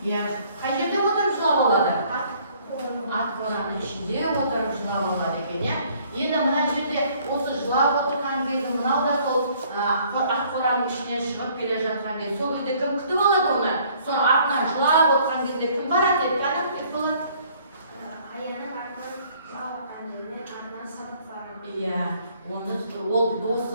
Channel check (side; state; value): both; inverted; correlation -0.60